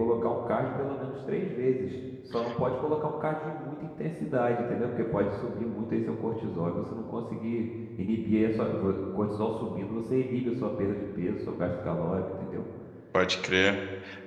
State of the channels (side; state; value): both; identical; correlation 1.00